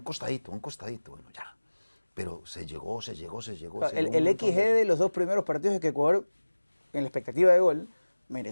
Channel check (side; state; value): both; inverted; correlation -1.00